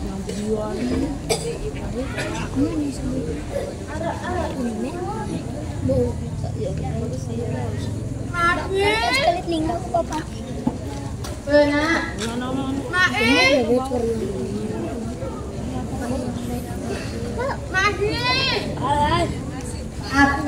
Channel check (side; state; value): both; identical; correlation 1.00